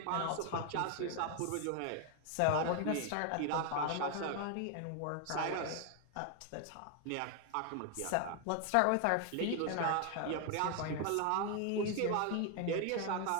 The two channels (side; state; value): both; different; correlation 0.00